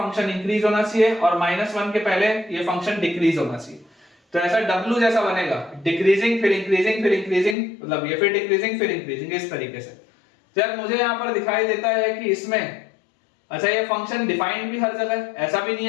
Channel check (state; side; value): drops out; right; at 7.6 s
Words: इंक्रीज होना चाहिए और -1 के पहले ये फंक्शन डिक्रीज होना चाहिए। तो ऐसा W जैसा बनेगा, डिक्रीजिंग फिर इंक्रीजिंग फिर इंक्रीजिंग, मतलब ये फिर डिक्रीजिंग फिर इंक्रीजिंग, इस तरीके से। जब मुझे यहाँ पर दिखाई देता है कि इसमें अच्छा ये फंक्शन डिफाइंड भी हर जगह, ऐसा भी नहीं